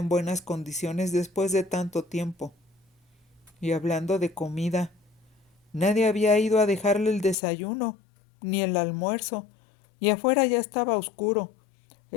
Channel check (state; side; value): drops out; right; at 7.4 s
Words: buenas condiciones después de tanto tiempo. Y hablando de comida, nadie había ido a dejarle el desayuno, ni el almuerzo, y afuera ya estaba oscuro.